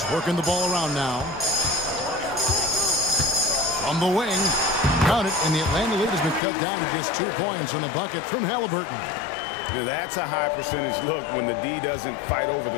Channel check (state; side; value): drops out; right; at 6.4 s